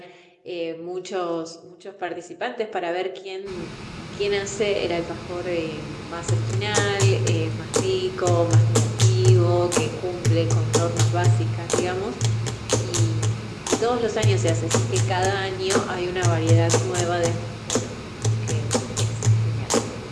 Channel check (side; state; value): both; identical; correlation 1.00